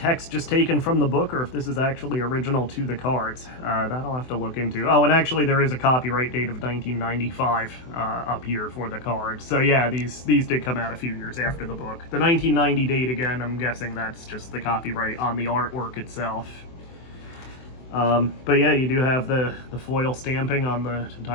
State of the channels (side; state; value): right; late; 24 ms